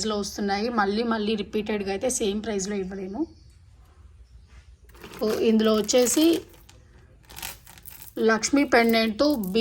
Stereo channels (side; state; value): both; identical; correlation 1.00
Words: వస్తున్నాయి. మళ్ళీ రిపీటెడ్గా అయితే సేమ్ ప్రైస్లో ఇవ్వలేము. ఇందులో వచ్చేసి లక్ష్మీ పెండెంట్తో